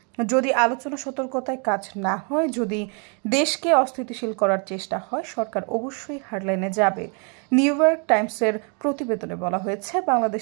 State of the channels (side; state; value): left; quieter; 37.4 dB